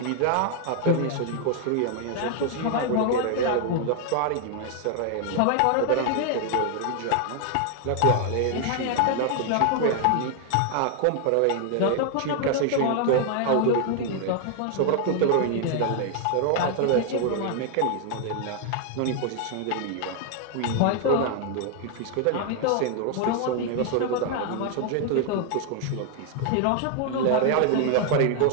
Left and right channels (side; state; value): both; different; correlation 0.00